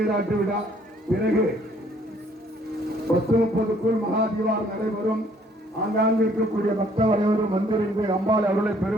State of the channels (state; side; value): normal; both; correlation 0.62